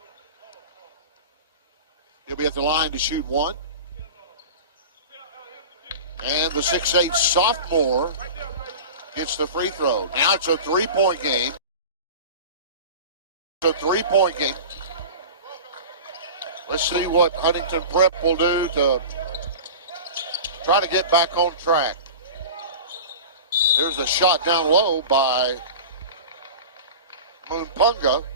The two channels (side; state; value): both; inverted; correlation -0.33